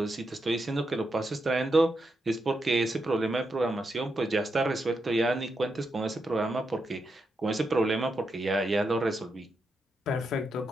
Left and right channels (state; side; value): normal; both; correlation 0.84